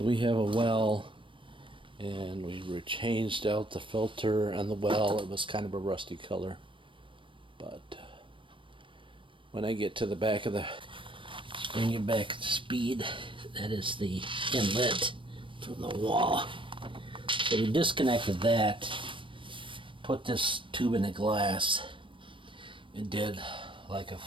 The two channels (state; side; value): late; left; 0.25 ms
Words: we have a well, and we changed out the filter on the well. It was kind of a rusty color, but when I get to the back of the, bring it back to speed, that is the inlet from the wall. So we disconnected that, put this tube in the glass, and did like a